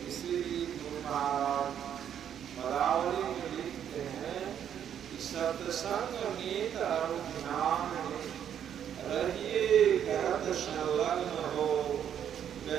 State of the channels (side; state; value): left; quieter; 9.3 dB